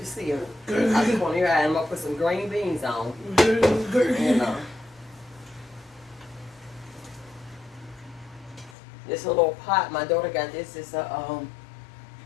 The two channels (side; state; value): right; drops out; at 8.8 s